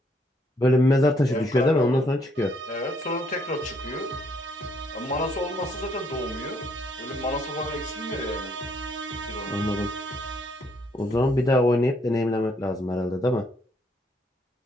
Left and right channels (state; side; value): normal; both; correlation 0.70